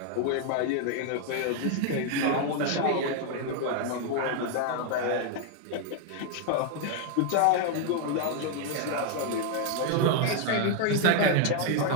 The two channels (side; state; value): both; different; correlation 0.00